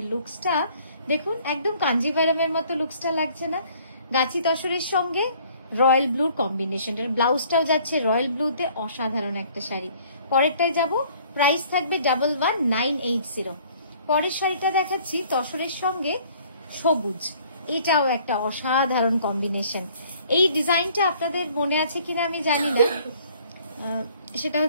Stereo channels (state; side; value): inverted; both; correlation -0.57